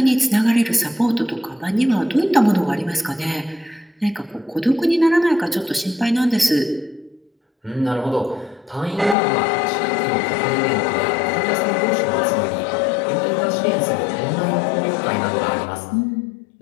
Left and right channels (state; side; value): drops out; right; at 9.2 s